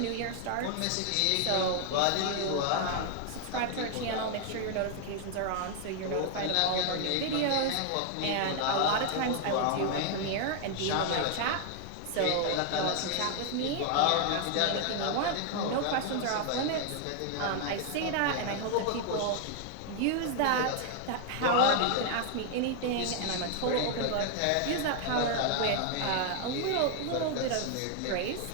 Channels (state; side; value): different; both; correlation 0.00